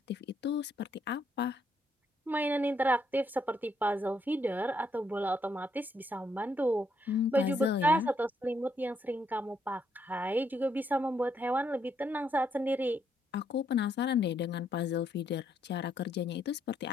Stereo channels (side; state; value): both; normal; correlation 0.74